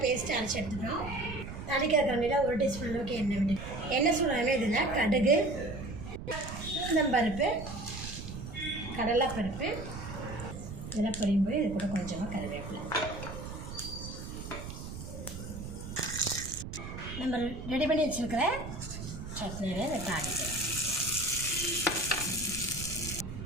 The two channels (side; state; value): right; noise; rumble, 9 dB below the sound